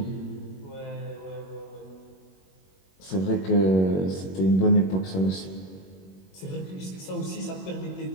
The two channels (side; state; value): right; late; 21 ms